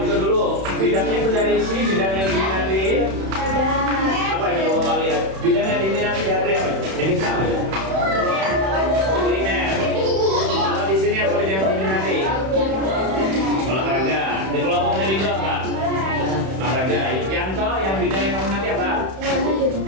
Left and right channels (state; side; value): late; left; 31 ms